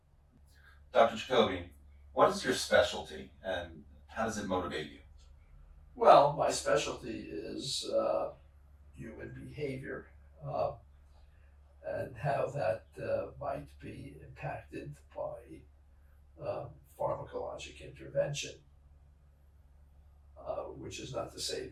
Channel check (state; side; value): identical; both; correlation 1.00